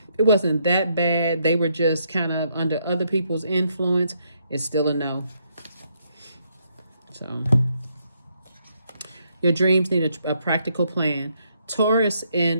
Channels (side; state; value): both; inverted; correlation -0.74